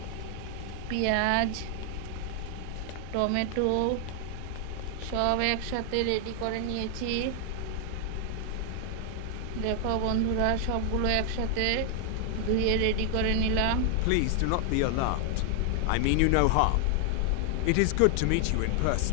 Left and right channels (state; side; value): different; both; correlation 0.00